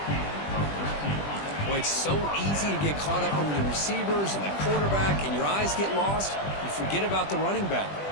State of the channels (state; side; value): late; right; 20 ms